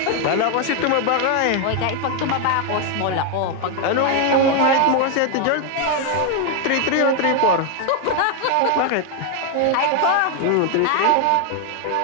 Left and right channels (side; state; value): both; different; correlation 0.01